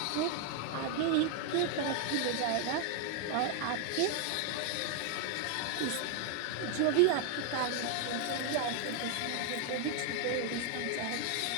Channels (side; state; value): both; different; correlation 0.00